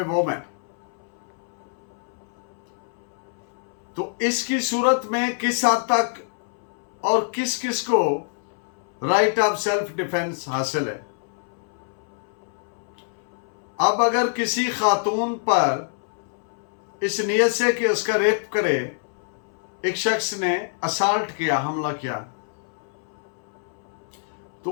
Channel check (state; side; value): silent; right; 61 dB below the other